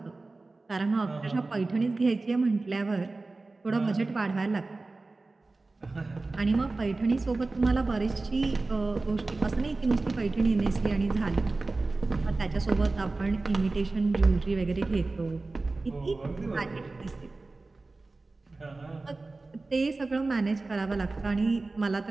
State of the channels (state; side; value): quieter; left; 3.4 dB